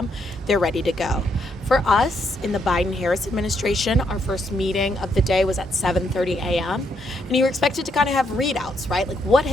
they're ready to go. For us in the Biden-Harris administration, our first meeting of the day was at 7:30 a.m. And you were expected to kind of have readouts, right? Like what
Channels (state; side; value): normal; both; correlation 0.75